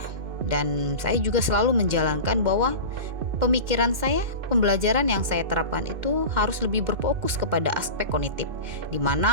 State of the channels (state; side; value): late; left; 2.1 ms